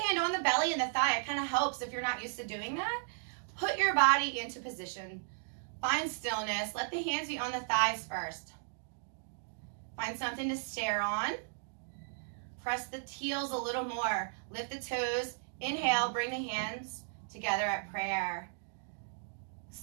on the belly and the thigh. It kind of helps if you're not used to doing that. Put your body into position. Find stillness. Let the hands be on the thighs first. Find something to stare on. Press the heels a little more. Lift the toes. Inhale, bring the hands together at prayer.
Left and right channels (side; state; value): left; silent; digital silence